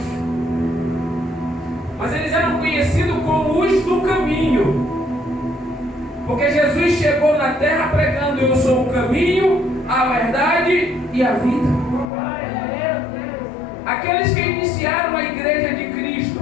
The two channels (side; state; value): right; drops out; at 12.1 s